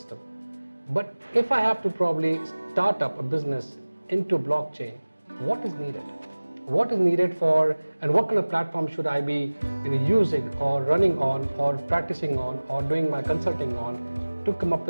But if I have to probably start up a business into blockchain, what is needed? What is needed for, and what kind of platform should I be using or running on or practicing on or doing my consulting on to come up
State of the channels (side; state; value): both; inverted; correlation -1.00